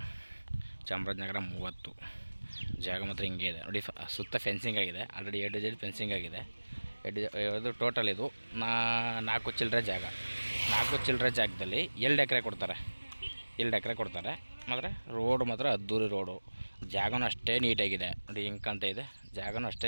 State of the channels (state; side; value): inverted; both; correlation -1.00